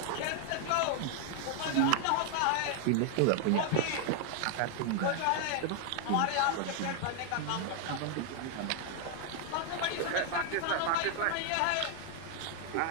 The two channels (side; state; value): both; different; correlation 0.00